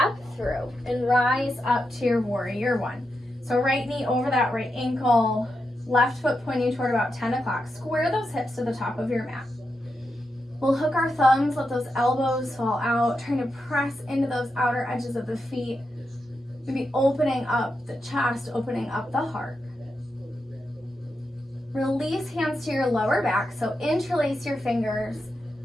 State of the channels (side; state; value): both; normal; correlation 0.86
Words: through and rise up to your warrior one. So right knee over that right ankle. Left foot pointing toward about 10 o'clock. Square those hips to the top of your mat. We'll hook our thumbs, let those elbows fall out, trying to press into those outer edges of the feet. Maybe opening up the chest, opening up the heart. Release hands to your lower back, so interlace your fingers.